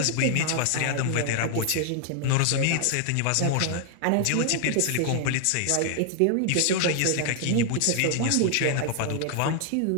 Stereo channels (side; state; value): both; different; correlation 0.00